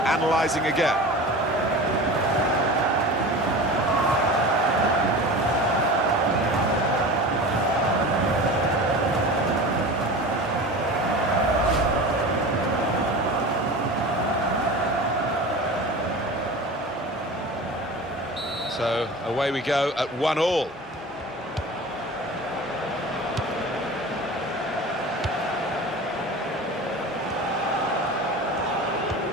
analysing again. So away we go at 1-1.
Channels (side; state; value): both; normal; correlation 0.34